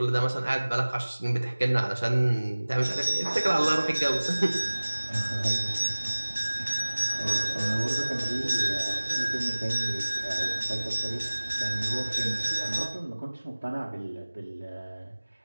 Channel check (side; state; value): both; inverted; correlation -1.00